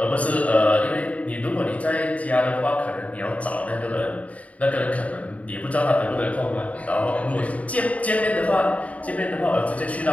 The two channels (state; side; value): late; right; 0.068 ms